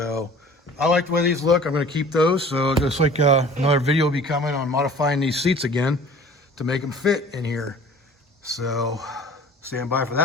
I like the way these look. I'm gonna keep those. So just like another video will be coming on modifying these seats again to make them fit in here. So stand by for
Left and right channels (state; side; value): normal; both; correlation 0.46